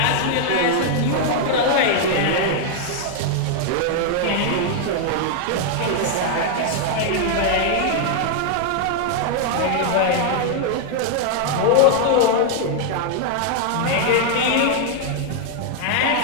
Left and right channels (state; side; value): different; both; correlation 0.00